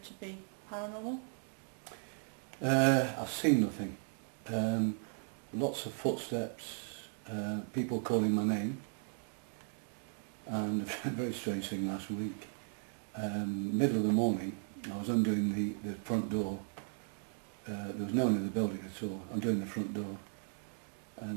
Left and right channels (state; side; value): silent; left; 53 dB below the other